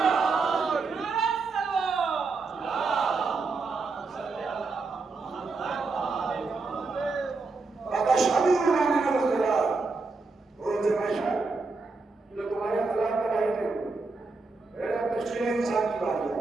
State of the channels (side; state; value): left; quieter; 4.0 dB